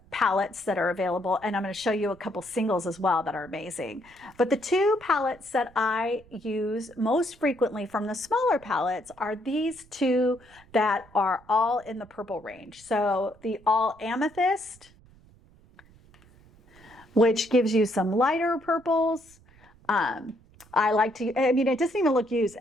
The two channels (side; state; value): right; noise; rumble, 27 dB below the sound